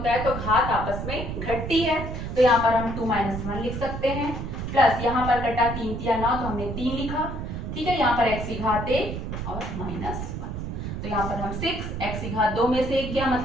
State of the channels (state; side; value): noise; right; rumble, 5 dB below the sound